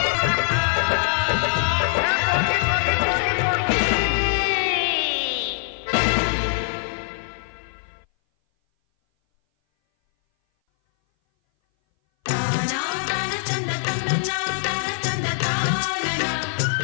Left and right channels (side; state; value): right; silent; 59 dB below the other